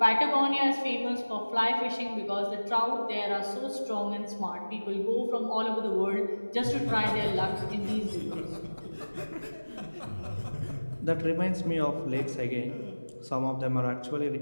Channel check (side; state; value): both; inverted; correlation -1.00